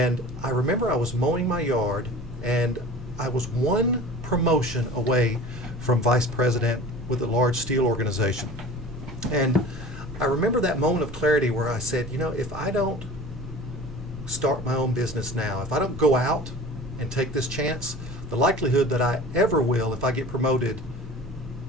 I remember I was mowing my yard and I was one promotion away from vice president with a large steel organization. And I remember that moment of clarity where I said, if I don't start my own business now, if I don't go out and take this chance, the likelihood that I ever will if I get promoted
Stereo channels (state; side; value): normal; both; correlation 0.40